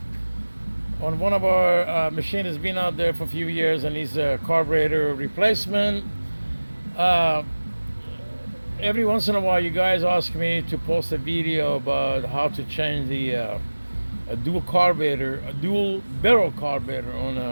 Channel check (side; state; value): both; inverted; correlation -1.00